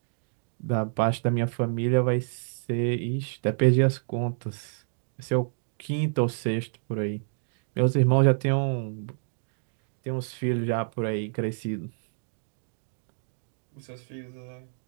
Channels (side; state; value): left; silent; digital silence